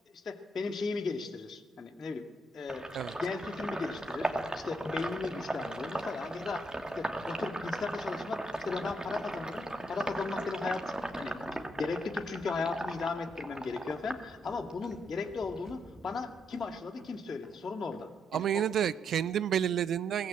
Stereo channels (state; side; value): normal; both; correlation 0.77